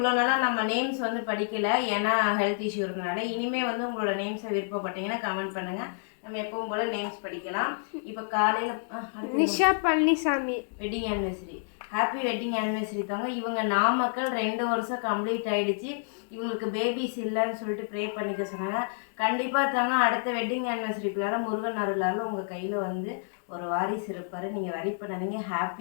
நாளாக நம்ம நேம்ஸ் வந்து படிக்கலை, ஏன்னா ஹெல்த் இஷ்யூ இருந்தனால. இனிமேல் வந்து உங்களோட நேம்ஸை விருப்பப்பட்டீங்கன்னா கமெண்ட் பண்ணுங்கள், நம்ம எப்பவும் போல் நேம்ஸ் படிக்கலாம். இப்போ காலையில் Nisha Palaniswami wedding anniversary. Happy wedding anniversary தாங்க. இவங்க நாமக்கல் 2 வருஷம் கம்ப்ளீட் ஆகிடுச்சு. இவங்களுக்கு பேபிஸ் இல்லைன்னு சொல்லிட்டு ப்ரே பண்ணிக்க சொன்னாங்க. கண்டிப்பாக தாங்க அடுத்த வெட்டிங் ஆனிவர்சரிக்குள்ளார முருகன் அருளால் உங்கள் கையில் வந்து ஒரு வாரிசு இருப்பார். நீங்கள் வரி பண்ணாதீங்க,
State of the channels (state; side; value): silent; right; digital silence